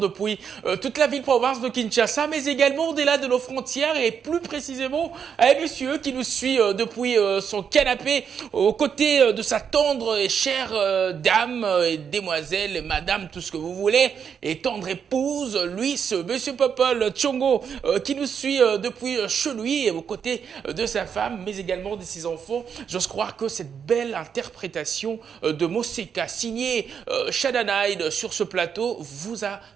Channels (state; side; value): quieter; left; 7.2 dB